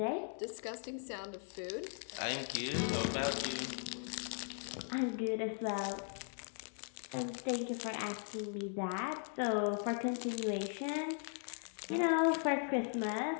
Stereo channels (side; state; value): right; silent; 52 dB below the other